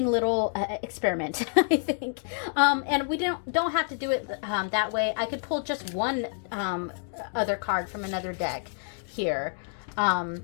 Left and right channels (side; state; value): right; silent; 58 dB below the other